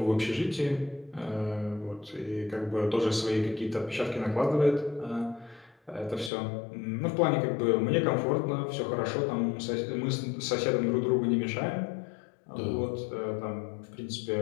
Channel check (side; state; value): right; drops out; at 6.3 s